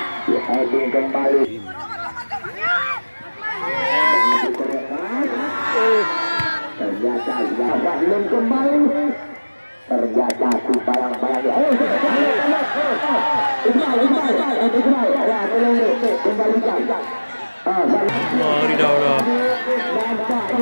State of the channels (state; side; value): inverted; both; correlation -1.00